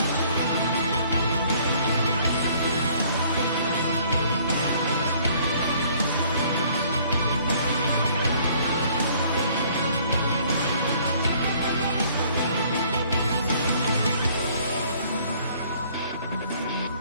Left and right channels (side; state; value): both; inverted; correlation -0.59